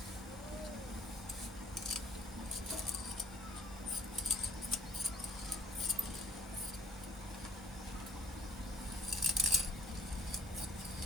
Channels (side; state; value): both; normal; correlation 0.54